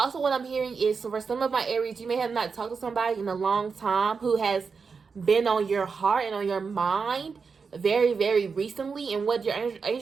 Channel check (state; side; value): quieter; left; 5.3 dB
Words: what I'm hearing is, so for some of my Aries, you may have not talked to somebody in a long time who has been on your heart and on your mind very, very recently, and what your